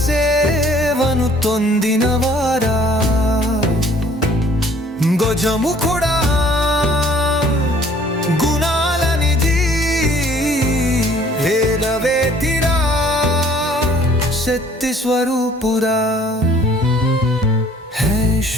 సేవను తొందినవారా, గజముఖుడా గుణాల నిధి, వేదవేతిరా శక్తి స్వరూపురా. హే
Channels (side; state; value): both; normal; correlation 0.56